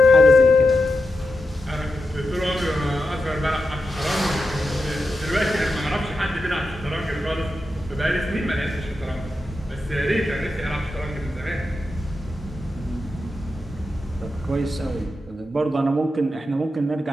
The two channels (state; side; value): normal; both; correlation 0.88